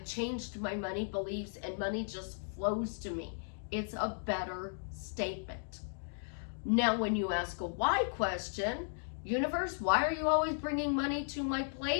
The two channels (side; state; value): right; silent; digital silence